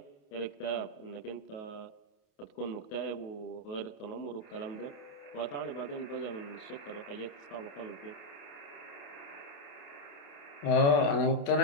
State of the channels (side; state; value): right; late; 28 ms